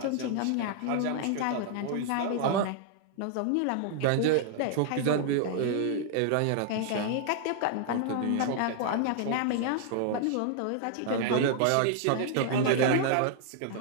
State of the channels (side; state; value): both; different; correlation -0.01